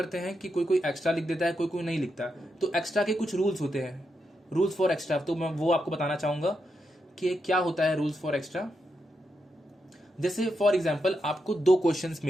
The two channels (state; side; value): normal; both; correlation 0.84